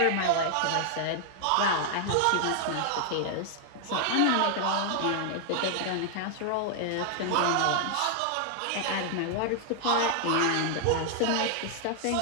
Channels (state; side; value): different; both; correlation 0.00